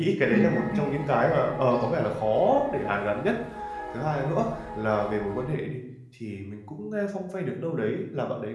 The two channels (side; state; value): both; identical; correlation 1.00